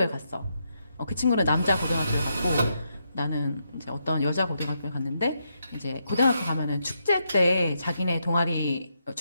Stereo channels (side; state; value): both; inverted; correlation -0.81